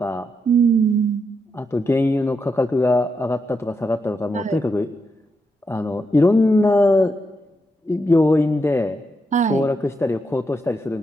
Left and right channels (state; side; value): normal; both; correlation 0.83